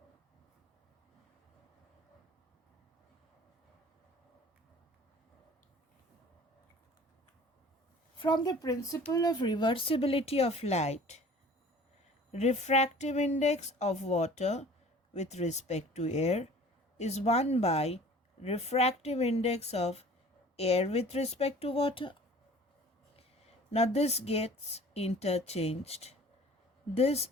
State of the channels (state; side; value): normal; both; correlation 0.47